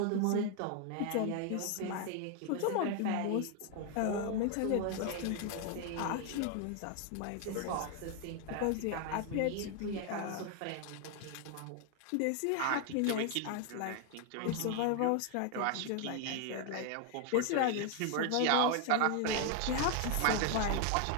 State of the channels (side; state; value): both; different; correlation 0.01